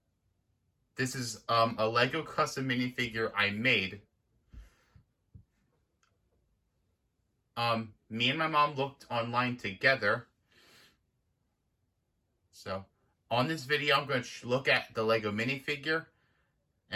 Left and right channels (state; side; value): identical; both; correlation 1.00